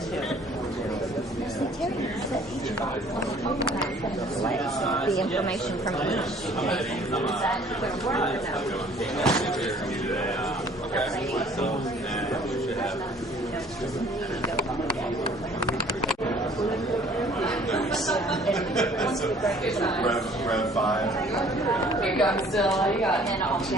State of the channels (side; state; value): both; normal; correlation 0.55